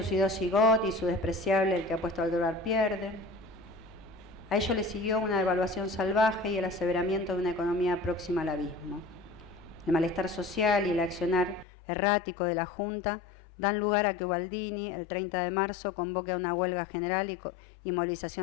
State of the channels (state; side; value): drops out; right; at 11.7 s